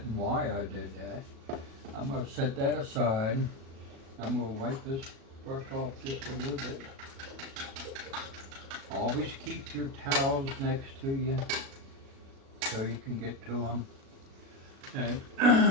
and why I did that. I'm going to set that aside. I'm going to wipe this brush off just a little bit. Always keep your towels next to you so you can get to them. And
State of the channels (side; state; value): left; late; 36 ms